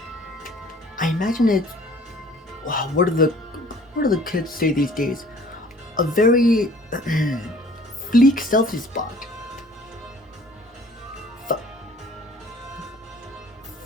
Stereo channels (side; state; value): both; normal; correlation 0.52